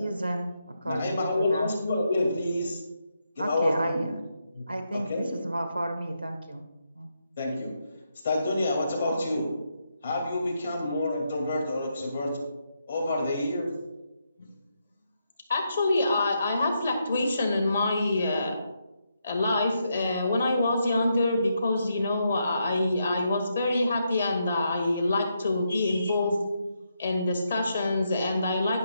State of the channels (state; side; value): inverted; both; correlation -0.81